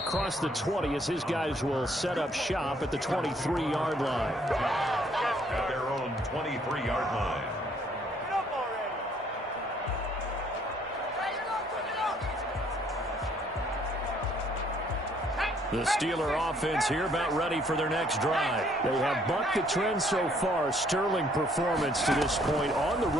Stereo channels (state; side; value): normal; both; correlation 0.65